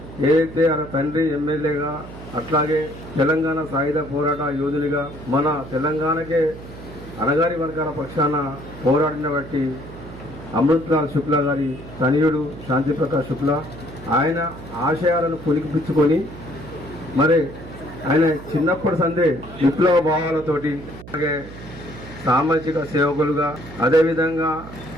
ఏదైతే ఆయన తండ్రి ఎమ్మెల్యేగా, అట్లాగే తెలంగాణ సాయుధ పోరాట యోధునిగా మన తెలంగాణకే అనగారి వర్గాల పక్షాన పోరాడిన బట్టి అమృత్లాల్ శుక్లా గారి తనయుడు శాంతి ప్రకాష్ శుక్లా ఆయన ఆశయాలను పులికిపుచ్చుకొని మరి ఆయన చిన్నప్పటి సందే విప్లవ భావాలతోటి, అలాగే సామాజిక సేవకులుగా, అదేవిధంగా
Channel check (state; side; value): noise; right; hum, 15 dB below the sound